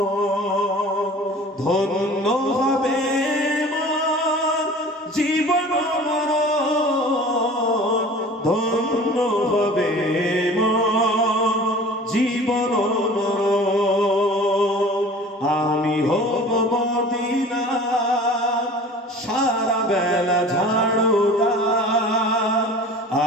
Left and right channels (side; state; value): both; normal; correlation 0.43